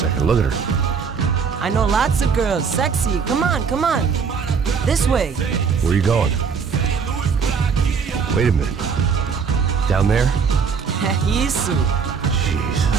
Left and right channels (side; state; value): left; quieter; 5.9 dB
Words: Look at her. I know lots of girls. Sexy. Come on, come on. This way. Where are you going? Wait a minute. Down there? Isso. Jesus.